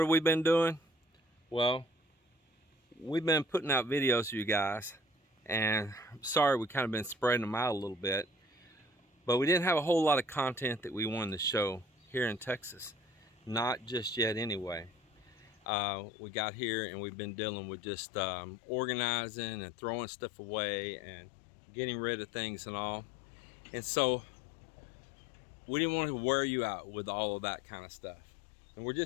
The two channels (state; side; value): drops out; right; at 15.7 s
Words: have we been doing? Well, we've been putting out videos for you guys, and I'm sorry we kind of been spreading them out a little bit, but we didn't have a whole lot of content that we wanted to show here in Texas. Not just yet anyway. We got here and we've been dealing with just organizing and throwing stuff away and getting rid of things and all. And so we didn't want to wear you out with all of that kind of stuff. And we're